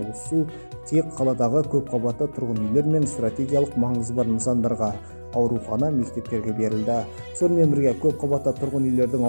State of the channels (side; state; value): both; inverted; correlation -1.00